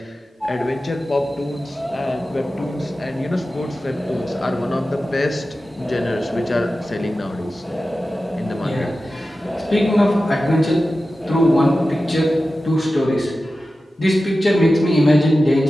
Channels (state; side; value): normal; both; correlation 0.94